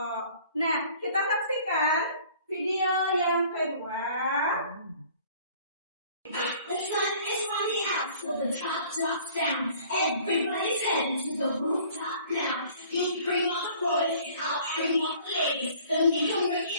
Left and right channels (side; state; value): both; inverted; correlation -0.53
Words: Nah, kita saksikan video yang kedua. The sun is running out, so the top drops down. Everybody's heading to the rooftop now. You bring on the boys, and I'll bring on the ladies. Then we can bring